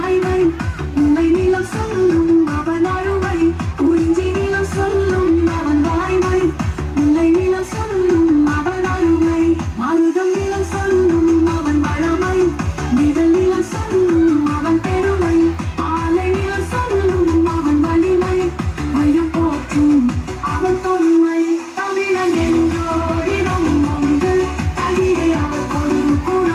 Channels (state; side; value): identical; both; correlation 1.00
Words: உண்மை நிலம் சொல்லும் அவன் அருமை குறிஞ்சி நிலம் சொல்லும் அவன் வாய்மை உண்மை நிலம் சொல்லும் அவன் அருமை மருதம் நிலம் சொல்லும் அவன் வளமை நிழல் நிலம் சொல்லும் அவன் பெருமை ஆலை நிலம் சொல்லும் அவன் வலிமை மையம் போற்றும் அவன் தொன்மை தமிழன் என்றோரிடம் உண்டு தமிழே அவர்கொரு